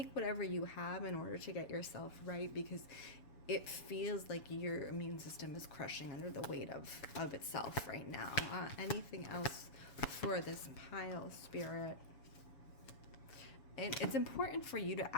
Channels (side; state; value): right; late; 7.0 ms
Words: whatever you have in order to get yourself right, because it feels like your immune system is crushing under the weight of itself right now. Anything else for this pile, Spirit? And it's important for you to